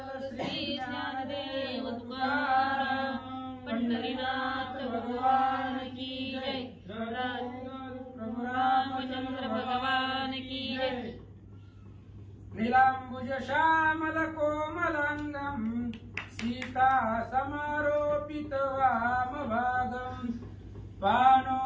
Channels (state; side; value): identical; both; correlation 1.00